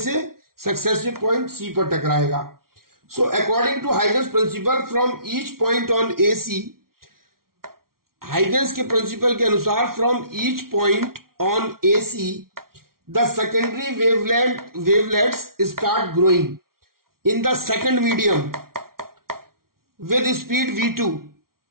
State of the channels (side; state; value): left; late; 0.93 ms